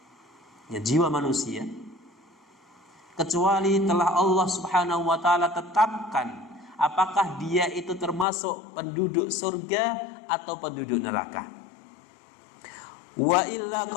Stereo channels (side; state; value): right; drops out; at 8.2 s